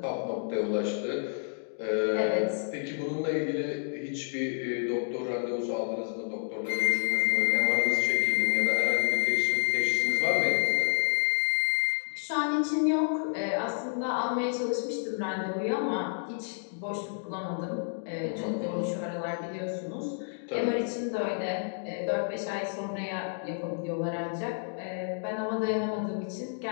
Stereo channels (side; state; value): right; silent; digital silence